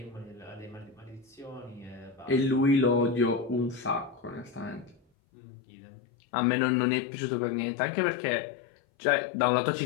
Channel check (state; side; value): drops out; right; at 5.0 s